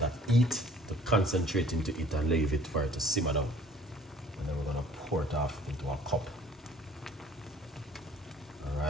heat to concentrate into it and leave it for it to simmer down. And then we're gonna pour it off into a cup. All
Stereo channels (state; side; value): normal; both; correlation 0.53